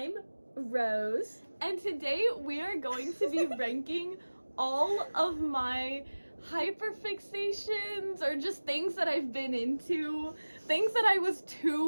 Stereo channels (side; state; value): both; inverted; correlation -1.00